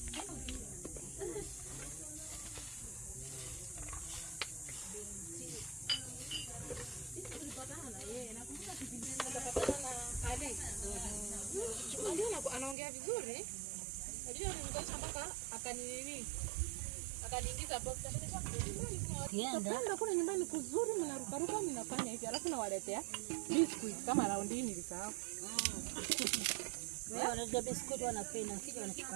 Anaongea vizuri. Najua nimekosha mpaka akaniingiza box. Ndio kuna nyumbani kuzuri mnarukaruka mnafanya hivi alafu nawaletea biscuit kama round hii nilisahau. Wewe unajua biscuit wanapenda kile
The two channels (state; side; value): drops out; left; at 12.8 s